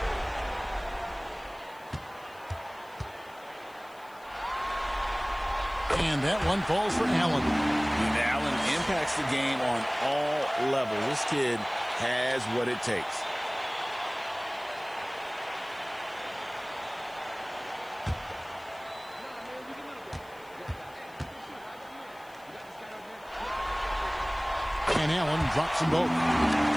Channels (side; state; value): left; noise; hiss, 26 dB below the sound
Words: And that one falls for Allen. And Allen impacts the game on all levels. This kid has what it takes. And Allen drops them both.